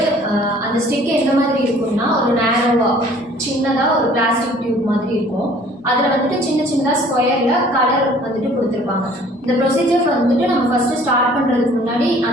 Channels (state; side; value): normal; both; correlation 0.53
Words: அந்த ஸ்டிக் எந்த மாதிரி இருக்கும்னா ஒரு நேரோவாக சின்னதாக ஒரு பிளாஸ்டிக் டியூப் மாதிரி இருக்கும். அதில் வந்துட்டு சின்ன சின்னதாக ஸ்கொயரில் கலர் வந்துட்டு கொடுத்துருப்பாங்க. இந்த ப்ரொசீஜர் வந்துட்டு நம்ம ஃபஸ்ட்டு ஸ்டார்ட் பண்ணுறதுக்கு முன்னாடி